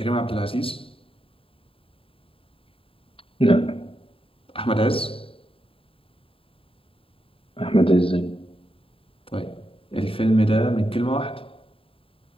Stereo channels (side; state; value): right; late; 0.27 ms